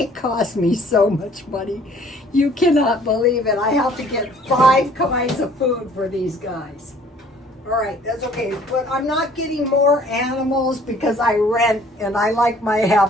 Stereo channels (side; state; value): both; normal; correlation 0.56